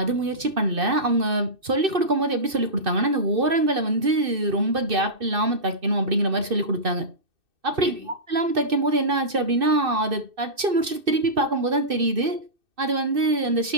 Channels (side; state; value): left; late; 2.6 ms